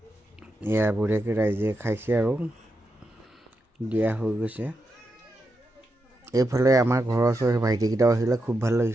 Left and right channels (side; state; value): both; normal; correlation 0.86